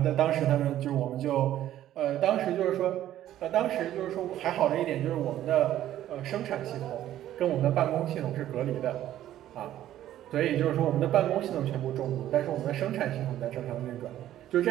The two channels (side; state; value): left; quieter; 12.6 dB